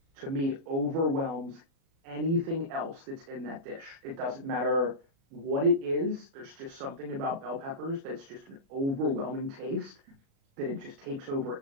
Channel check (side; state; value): left; late; 37 ms